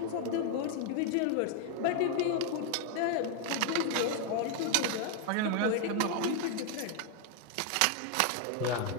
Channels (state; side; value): different; both; correlation 0.00